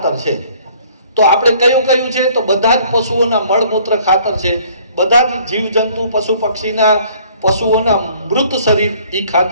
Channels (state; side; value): inverted; both; correlation -0.57